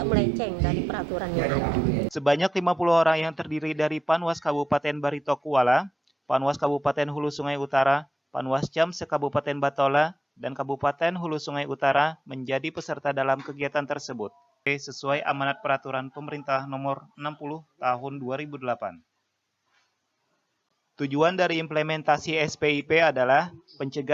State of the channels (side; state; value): both; normal; correlation 0.90